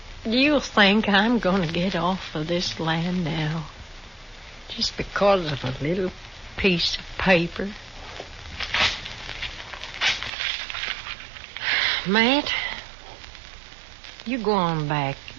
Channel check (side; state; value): left; drops out; at 10.3 s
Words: you think I'm going to get off of this land now? Just because of a little piece of paper? Matt, you go on back.